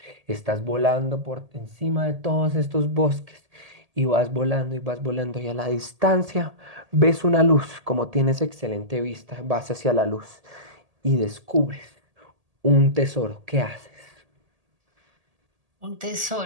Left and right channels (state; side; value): late; left; 1.8 ms